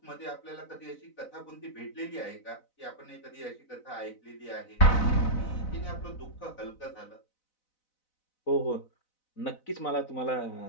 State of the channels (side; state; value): right; late; 4.0 ms